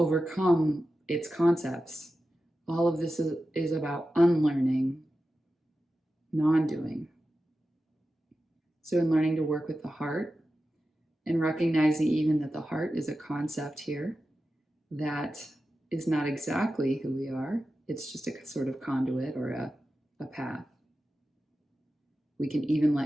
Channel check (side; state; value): both; normal; correlation 0.92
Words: its concepts. All of this is about unlearning, non-doing. So in learning to work with the heart and recognizing even that the heart is a concept here that is not exactly who we are, it's just a sort of conduit or a path. We can even